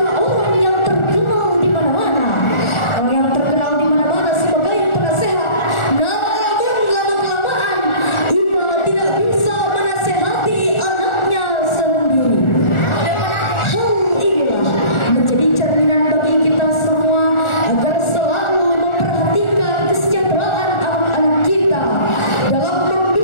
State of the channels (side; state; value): right; late; 1.4 ms